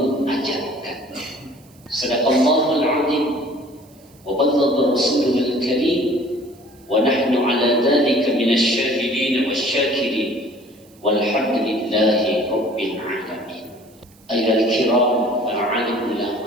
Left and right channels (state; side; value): noise; right; hiss, 29 dB below the sound